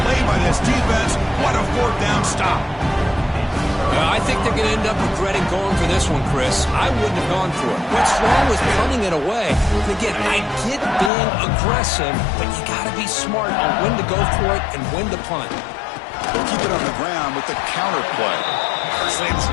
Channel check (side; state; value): right; drops out; at 11.1 s